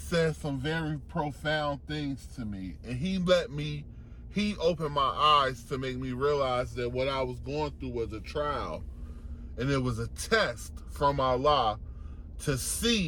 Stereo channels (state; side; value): identical; both; correlation 1.00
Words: some very profound things to me, and he opened my eyes to make me realize that what I was going through was a trial, and it was a test from Allah to